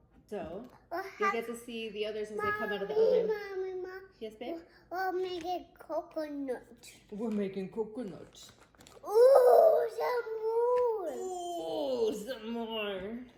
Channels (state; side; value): identical; both; correlation 1.00